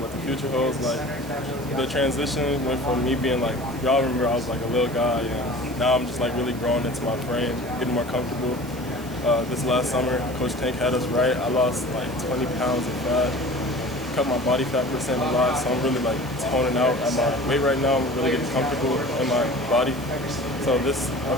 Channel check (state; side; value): noise; right; hiss, 19 dB below the sound